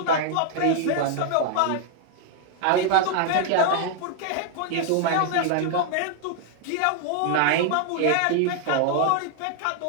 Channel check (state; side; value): different; both; correlation 0.00